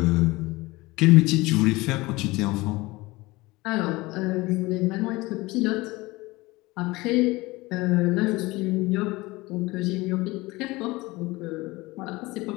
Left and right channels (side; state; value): right; quieter; 21.3 dB